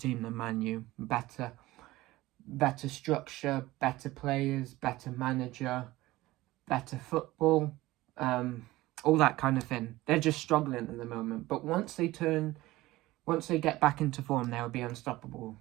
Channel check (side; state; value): left; quieter; 18.1 dB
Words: than Man U. Better structure, better players, better manager, better football, all that kind of thing. They're just struggling at the moment, but once they get back into form, they'll be unstoppable.